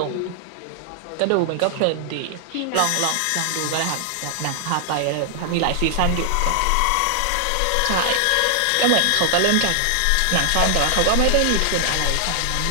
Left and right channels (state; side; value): different; both; correlation 0.00